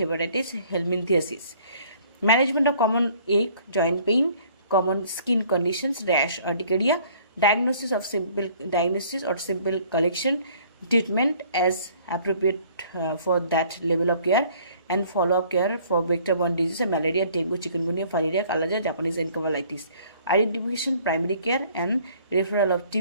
hepatitis, helminthiasis. Management of common ache, joint pain, common skin conditions, rash, urticaria, diagnosis or simple collection, treatment as appropriate for that level of care, and follow-up care for vector-borne diseases, malaria, dengue, chikungunya, filaria, kalaja, Japanese encephalitis. Identification, primary care and referral of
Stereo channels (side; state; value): both; inverted; correlation -0.56